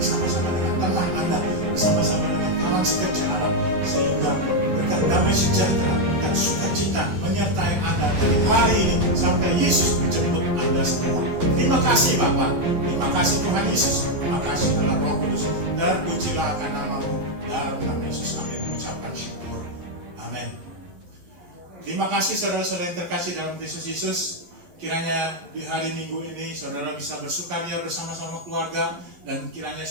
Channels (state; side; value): late; left; 12 ms